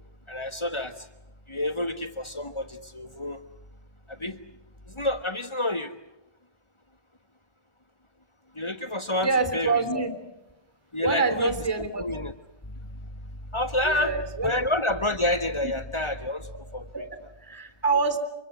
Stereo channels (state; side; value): late; right; 1.4 ms